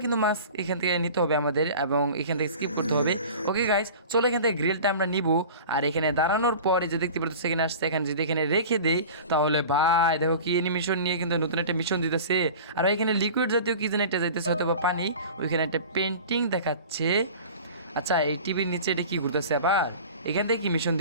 কিন্তু মাস্ক এখান থেকে নিতে হবে আমাদের, এবং এখান থেকে স্কিপ করতে হবে। ওকে গাইস চলো এখান থেকে গ্রিলটা আমরা নিব। আর এখানে দাঁড়ানোর পরে যে দেখতে পাচ্ছ এখানে আসছে, এখানে যদি এখানে রেখে দেই তাহলে ভাই দেখো কি মিশন নিয়ে কিন্তু নতুন একটা মিশন দিতেছে। আর এখানে লিকুইড জাতীয় কি যেন একটা যাইতেছে, হয়তো বা পানি। ওইখানে একটা পেন্টিং দেখাচ্ছে। আচ্ছা এই টিভির নিচে এটা কি ঘুরতেছে আবার, এখান থেকে কি মিশন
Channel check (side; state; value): both; inverted; correlation -0.38